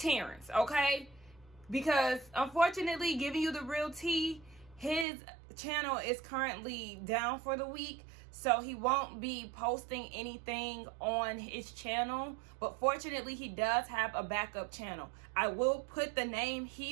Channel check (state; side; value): drops out; left; at 5.1 s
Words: okay? Because unfortunately, giving you the real tea, his channel is currently down for the week, so he won't be posting anything on his channel. But fortunately, he does have a backup channel. I will put the name